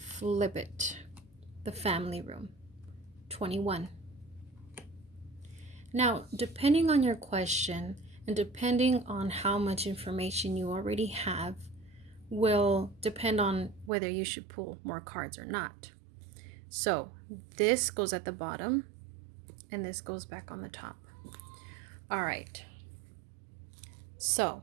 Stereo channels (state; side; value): drops out; left; at 13.9 s